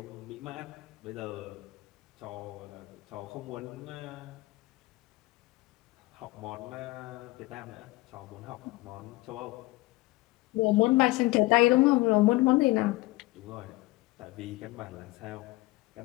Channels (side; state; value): right; quieter; 20.6 dB